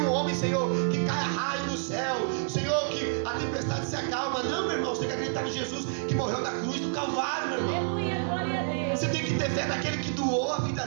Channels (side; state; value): left; silent; digital silence